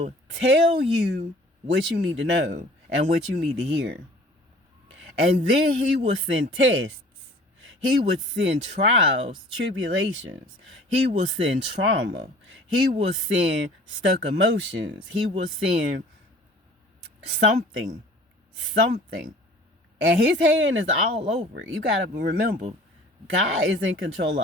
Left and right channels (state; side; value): normal; both; correlation 0.48